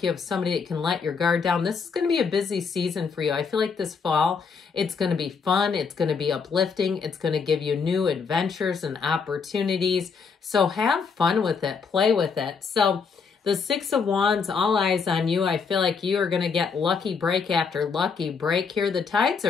you have somebody that can let your guard down. This is going to be a busy season for you. I feel like this fall, it's going to be fun. It's going to be uplifting. It's going to give you new adventures and opportunities. So have fun with it. Play with it. So the Six of Wands, all eyes on you. I feel like you are going to get lucky break after lucky break here. The tides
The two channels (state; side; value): quieter; right; 5.5 dB